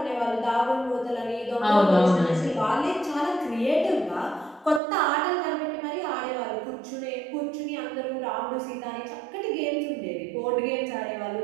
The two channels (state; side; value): drops out; left; at 4.8 s